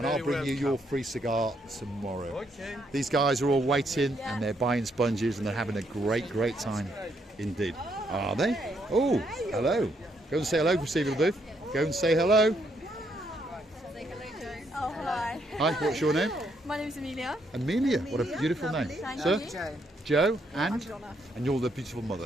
I'll very bring you your welcome. free cigar tomorrow. Okay. These guys are all waiting and they're buying sponges and they're having a great time indeed. Are they? Oh, hello. Go and say hello, Receiver Booth. Go and say hello. Oh, hi. Hi, what's your name? My name is Amelia. Amelia. What a beautiful name. Thank Sir? you. Joe and? Donna. And you're the beautiful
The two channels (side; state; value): both; normal; correlation 0.74